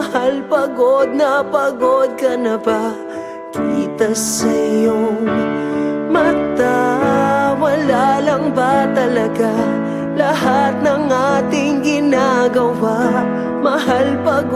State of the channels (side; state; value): both; identical; correlation 1.00